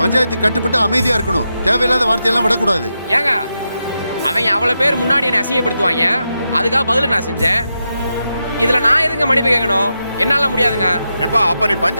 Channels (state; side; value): inverted; both; correlation -0.87